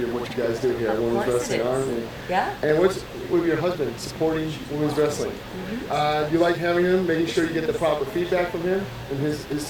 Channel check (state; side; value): identical; both; correlation 1.00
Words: of what you guys do here at Women's Wrestling Army. Yeah. And what's with your husband supporting women's wrestling? Do you like having him, making sure you get the proper feedback from him in his